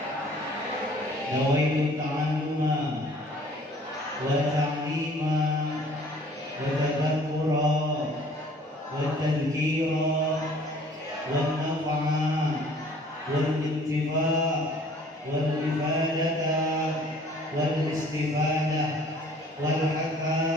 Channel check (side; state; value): both; normal; correlation 0.54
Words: Nawaitu ta'alluma wa ta'lima wa tadhakkura wa tadhkira wa nafa'a wal intifa' wal ifadata wal istifadah wal haqqa